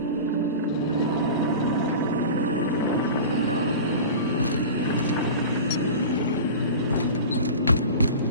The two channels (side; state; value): both; inverted; correlation -0.33